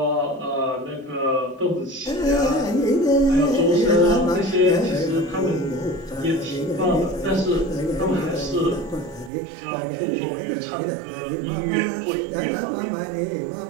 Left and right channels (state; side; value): drops out; left; at 9.3 s